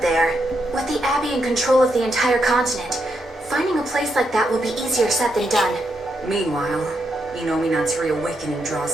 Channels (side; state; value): both; normal; correlation 0.81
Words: there. With the Abbey in control of the entire continent, finding a place like that will be easier said than done. Meanwhile, Innominat's reawakening